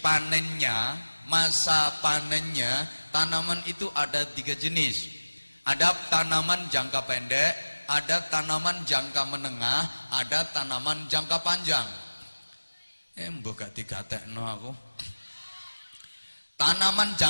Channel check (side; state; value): both; inverted; correlation -1.00